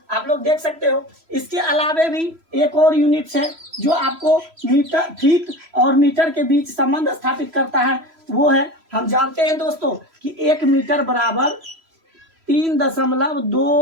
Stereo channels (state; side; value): late; left; 3.0 ms